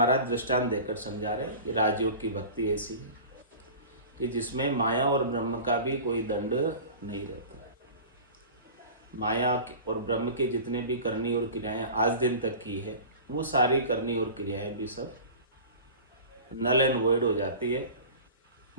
दृष्टांत देकर समझा रहे कि राजयोग की भक्ति ऐसी है कि जिसमें माया और ब्रह्म का भी कोई दंड नहीं रहता। माया और ब्रह्म के जितने भी करनी और क्रियाएं आज दिन तक की है वो सारी करनी और क्रियाएं भी सब नल एंड वॉइड हो जाती है,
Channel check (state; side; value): inverted; both; correlation -0.37